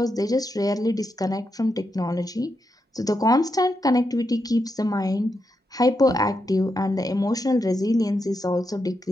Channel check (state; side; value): normal; both; correlation 0.84